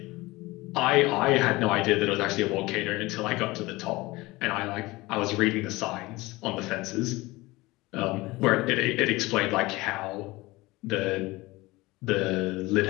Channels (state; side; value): quieter; right; 21.0 dB